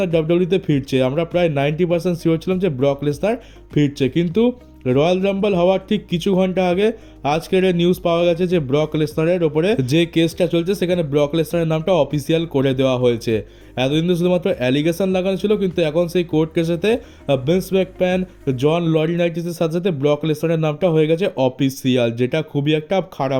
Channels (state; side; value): identical; both; correlation 1.00